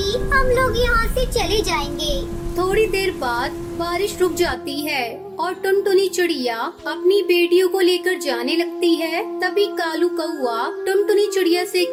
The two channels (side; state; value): both; identical; correlation 1.00